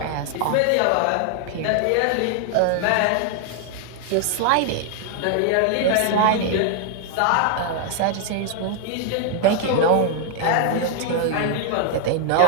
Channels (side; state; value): both; different; correlation 0.00